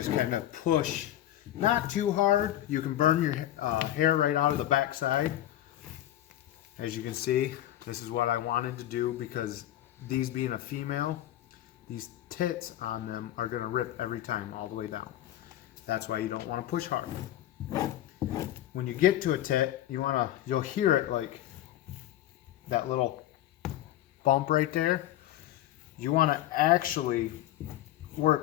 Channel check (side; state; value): right; quieter; 13.1 dB